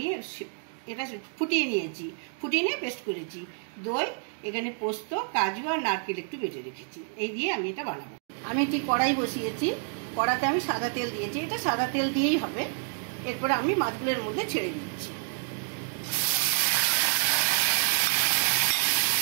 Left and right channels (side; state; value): left; silent; 58 dB below the other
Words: এটা ফুটিয়ে নিয়েছি, ফুটিয়ে নিয়ে পেস্ট করেছি। দই, এখানে পোস্ত, কাজু আর নারকেল একটু বেটে রেখেছি। এই দিয়ে আমি এটা বানাবো। আমি একটি কড়াই বসিয়েছি, কড়াতে আমি সাদা তেল দিয়েছি। এটা সাদা তেল দিয়েই হবে। এরপরে আমি মাছগুলোর মধ্যে ছেড়ে দিচ্ছি।